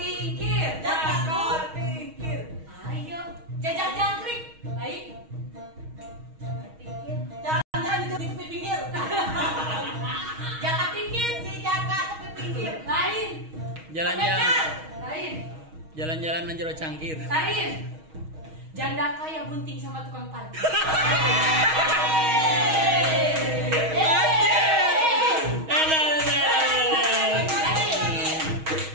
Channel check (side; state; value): left; late; 6.3 ms